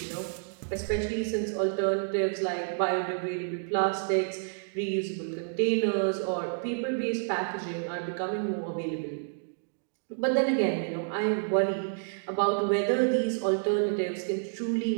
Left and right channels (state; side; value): silent; left; digital silence